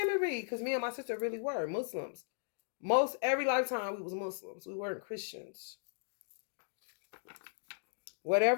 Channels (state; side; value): silent; right; digital silence